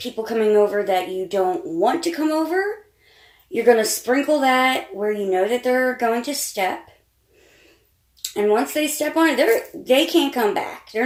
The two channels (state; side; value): identical; both; correlation 1.00